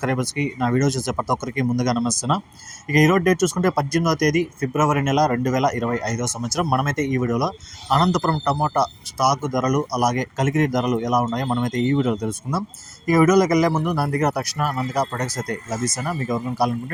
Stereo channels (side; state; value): both; identical; correlation 1.00